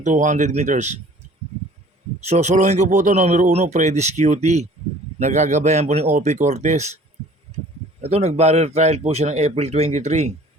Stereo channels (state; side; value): normal; both; correlation 0.50